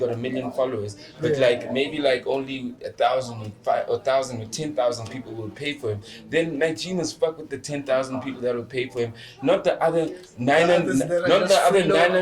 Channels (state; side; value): identical; both; correlation 1.00